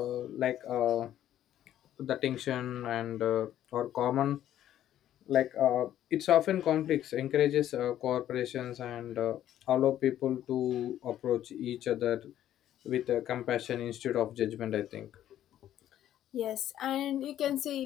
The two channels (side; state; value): right; quieter; 11.8 dB